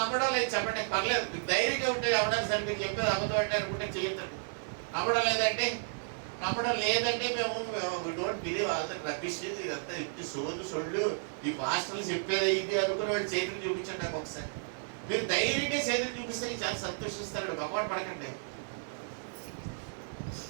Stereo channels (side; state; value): left; silent; 56 dB below the other